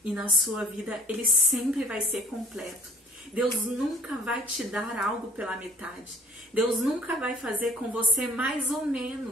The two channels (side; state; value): both; normal; correlation 0.52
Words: e na sua vida, ele sempre vai ser completo. Deus nunca vai te dar algo pela metade. Deus nunca vai fazer com você mais ou